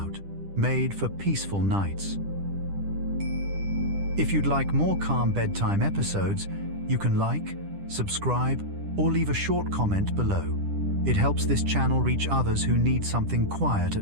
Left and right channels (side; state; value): left; late; 10 ms